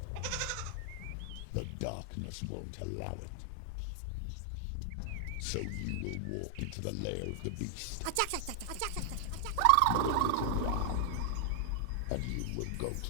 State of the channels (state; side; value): different; both; correlation 0.00